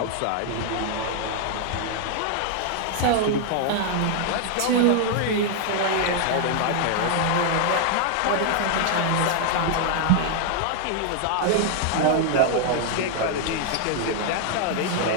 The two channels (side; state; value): both; different; correlation 0.00